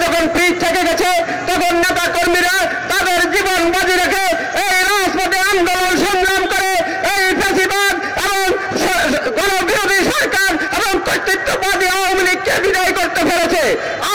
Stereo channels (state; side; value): identical; both; correlation 1.00